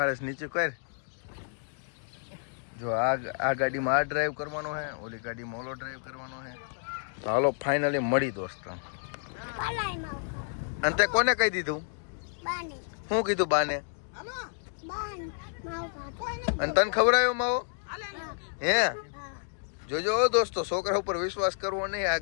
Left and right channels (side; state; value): right; silent; digital silence